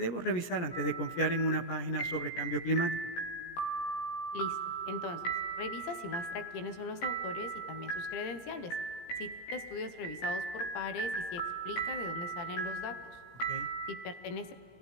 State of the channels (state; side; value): late; right; 17 ms